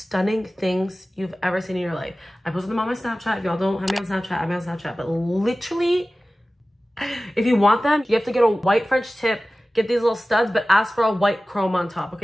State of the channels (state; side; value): normal; both; correlation 0.97